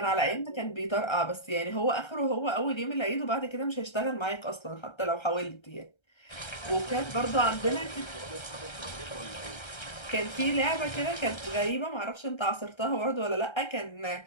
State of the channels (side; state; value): right; late; 1.3 ms